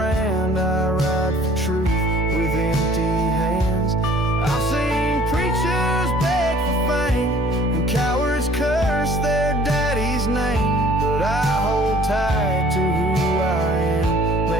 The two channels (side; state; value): both; normal; correlation 0.54